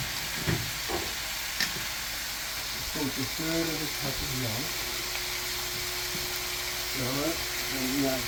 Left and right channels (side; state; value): both; identical; correlation 1.00